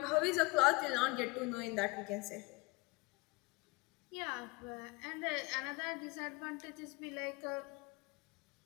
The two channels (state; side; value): quieter; right; 25.1 dB